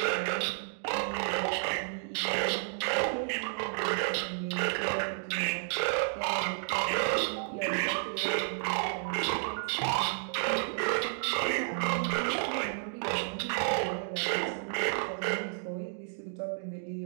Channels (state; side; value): silent; left; digital silence